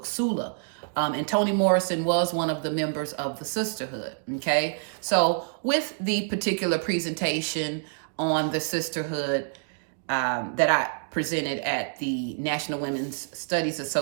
Sula. And Toni Morrison was one of the members of the sisterhood. Okay, so with the particular presentation on the sisterhood that I presented at the National Women's Studies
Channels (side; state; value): left; silent; digital silence